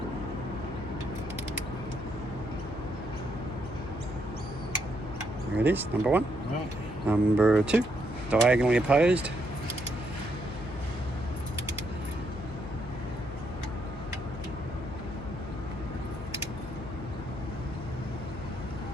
There it is, number one. Right. Number two, diagonally opposed.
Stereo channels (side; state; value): left; noise; hum, 11 dB below the sound